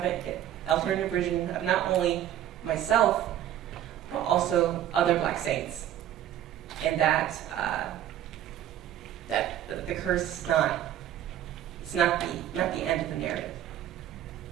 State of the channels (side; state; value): left; quieter; 11.5 dB